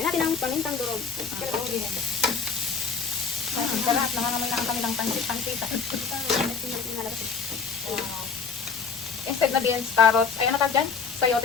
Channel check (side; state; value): right; quieter; 5.6 dB